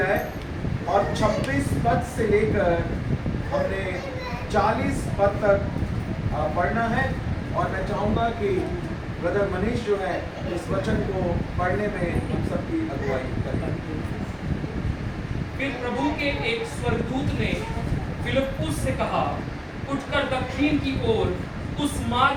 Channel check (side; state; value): both; identical; correlation 1.00